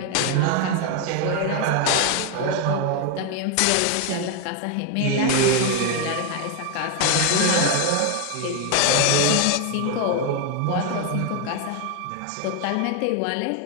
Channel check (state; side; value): different; both; correlation 0.01